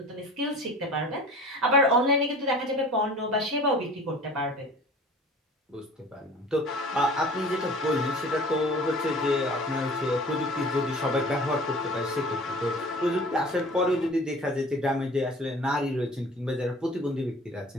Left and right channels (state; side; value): normal; both; correlation 0.43